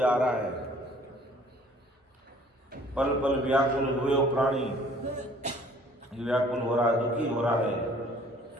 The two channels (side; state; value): both; normal; correlation 0.55